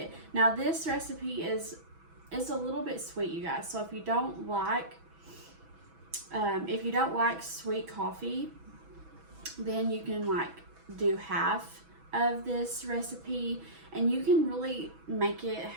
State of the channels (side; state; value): left; late; 6.1 ms